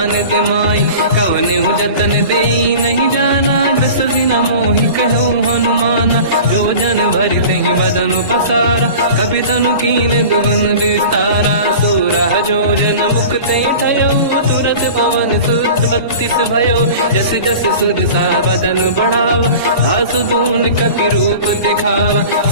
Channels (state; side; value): inverted; both; correlation -0.39